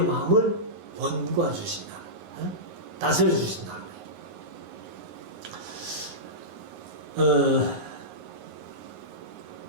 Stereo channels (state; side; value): late; left; 9.6 ms